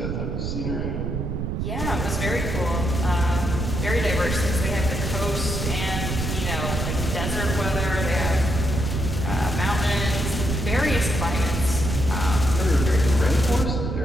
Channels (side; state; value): right; noise; rumble, 2 dB below the sound